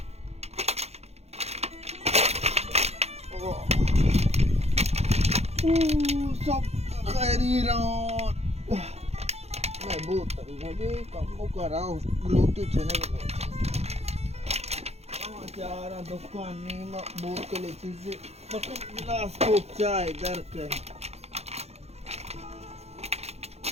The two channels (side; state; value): left; late; 0.31 ms